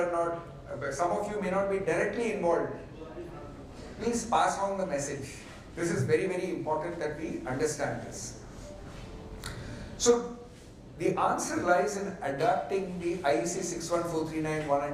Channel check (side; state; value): both; identical; correlation 1.00